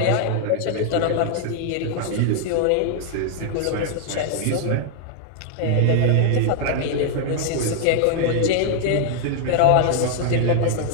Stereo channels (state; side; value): different; both; correlation 0.00